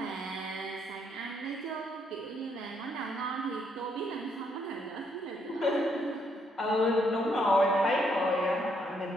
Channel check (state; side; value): normal; both; correlation 0.73